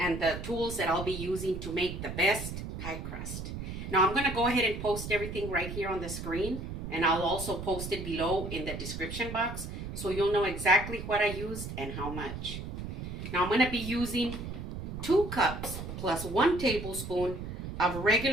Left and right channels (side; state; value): right; noise; rumble, 7 dB below the sound